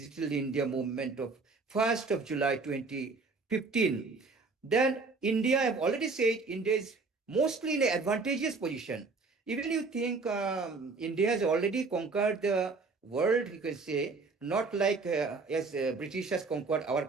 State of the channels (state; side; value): quieter; left; 4.1 dB